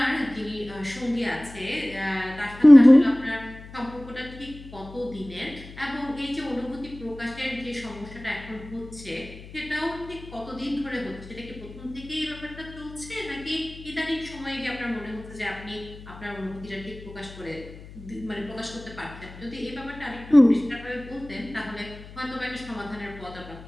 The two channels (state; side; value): noise; left; hum, 16 dB below the sound